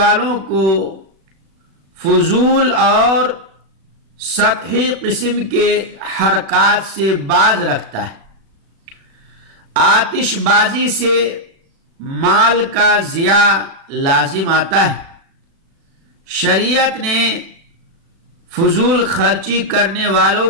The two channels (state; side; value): late; left; 36 ms